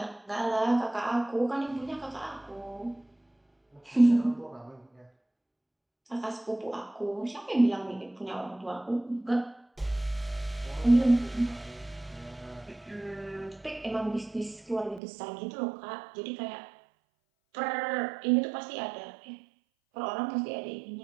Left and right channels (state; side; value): drops out; left; at 15.0 s